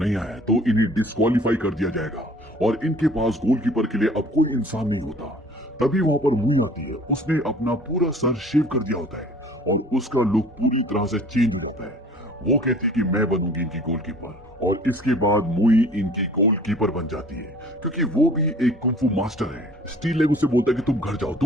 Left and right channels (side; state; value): both; normal; correlation 0.50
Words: आया तो इन्हें डिस्क्वालीफाई कर दिया जाएगा और इनके पास गोलकीपर के लिए अब कोई इंसान नहीं होता। तभी वहां पर मुई आती है, उसने अपना पूरा सर शेव कर दिया होता है और उसका लुक पूरी तरह से चेंज हो जाता है। वो कहती है कि मैं बनूंगी इनकी गोलकीपर और इसके बाद मुई इनकी गोलकीपर बन जाती है क्योंकि वो भी एक कुंफू मास्टर है। स्टील लेग उसे बोलता है कि तुम घर जाओ,